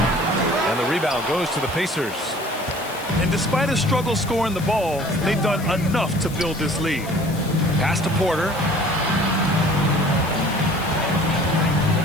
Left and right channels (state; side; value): noise; left; hiss, 15 dB below the sound